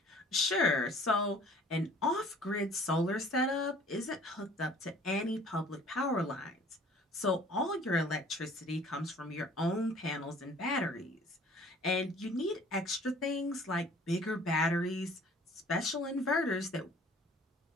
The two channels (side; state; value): both; normal; correlation 0.52